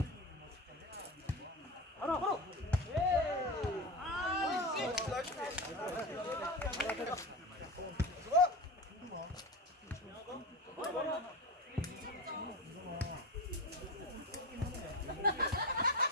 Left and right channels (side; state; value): both; normal; correlation 0.24